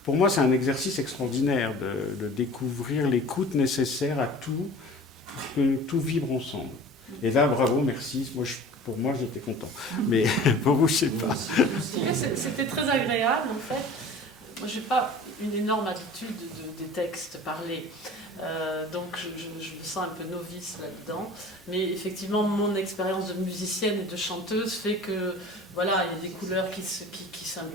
Pour moi, c'est un exercice extraordinaire de découvrir l'écoute nécessaire à tout, pour que tout vibre ensemble. Et là, bravo, merci. Pour moi, j'étais content. Mais pour vous, je ne sais pas. C'était très agréable, en fait. Moi, je n'ai pas une énorme habitude des textes parlés. Donc je me sens un peu novice là-dedans. Mais effectivement, mon expérience de musicienne et de chanteuse fait que voilà, il y a des couleurs qui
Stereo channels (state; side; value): normal; both; correlation 0.42